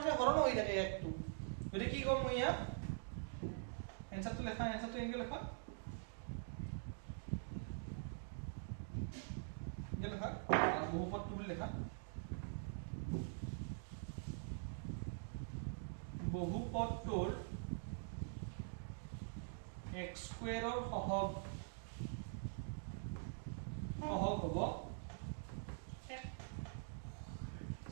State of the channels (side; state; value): left; silent; digital silence